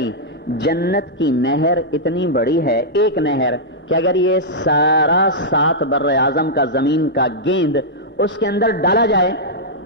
جنت کی نہر اتنی بڑی ہے، ایک نہر کہ اگر یہ سارا 7 بر اعظم کا زمین کا گیند اس کے اندر ڈالا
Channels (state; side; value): normal; both; correlation -0.09